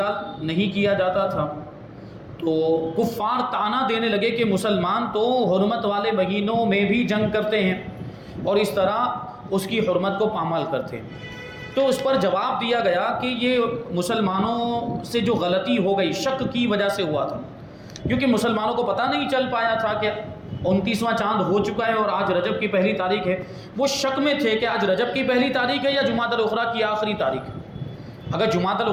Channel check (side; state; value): both; identical; correlation 1.00